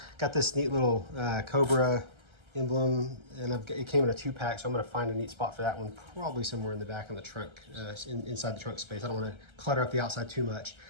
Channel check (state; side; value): late; left; 1.3 ms